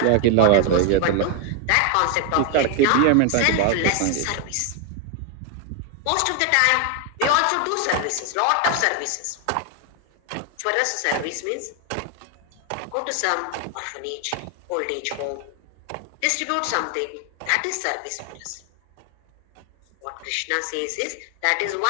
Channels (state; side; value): different; both; correlation 0.01